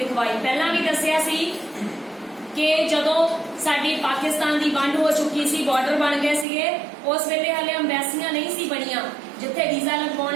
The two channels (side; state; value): left; drops out; at 6.5 s